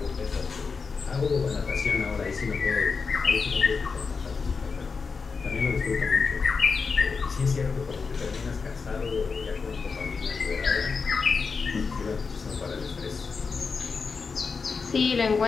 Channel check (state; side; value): quieter; right; 5.0 dB